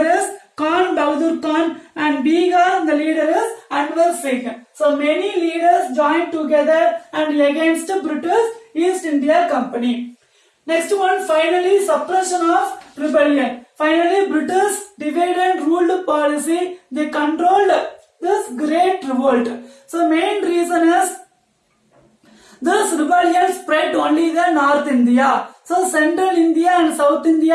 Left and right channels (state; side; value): identical; both; correlation 1.00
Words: is Khan Bahadur Khan, and Bihar, the leader is Anwar Singh. So many leaders joined together and against the British East India Company. Next one, finally, suppression of rebellion. Finally, British divide and ruled policy, they controlled this great revolt. So main reason is this rebellion spread only the North India. So Central India and South